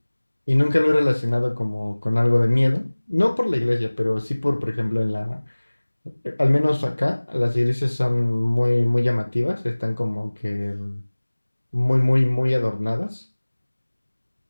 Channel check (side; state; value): both; inverted; correlation -1.00